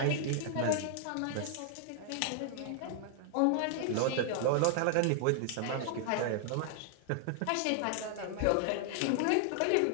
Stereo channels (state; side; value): different; both; correlation 0.00